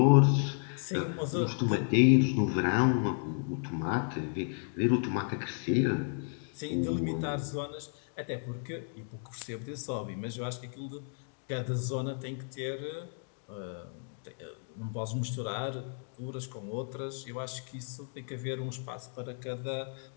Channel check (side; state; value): right; silent; 56 dB below the other